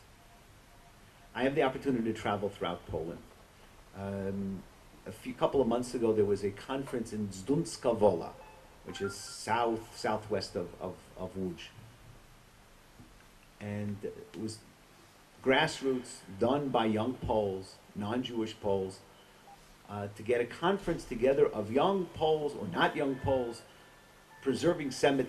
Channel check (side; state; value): both; identical; correlation 1.00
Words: I have the opportunity to travel throughout Poland. Couple of months ago, there was a conference in Zdunska Wola, which is southwest of Łódź. And it was grassroots, done by young Poles, non-Jewish Poles, to get a conference together of young Poles or not young Poles, preserving